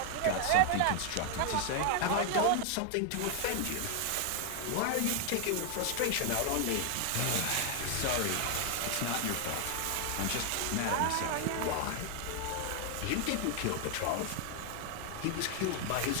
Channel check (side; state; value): both; different; correlation 0.00